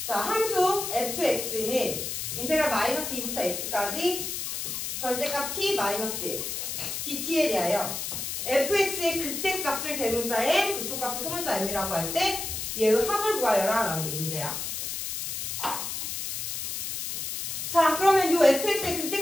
자, 함수 fx는 인테그랄 마이너스 2부터 x까지 절대값 t 마이너스 1 dt에 대하여 fx의 극대값을 대문자에 극소값을 소문자 m이라고 할 때 얘의 합을 구하여라 라는 게 문제야. 자, 그러면 이 fx의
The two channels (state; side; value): noise; left; hiss, 4 dB below the sound